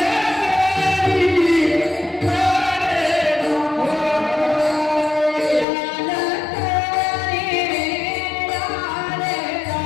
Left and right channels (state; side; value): drops out; right; at 5.7 s